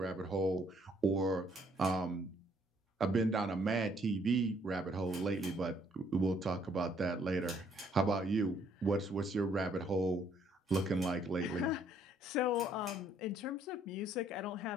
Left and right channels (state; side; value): normal; both; correlation 0.66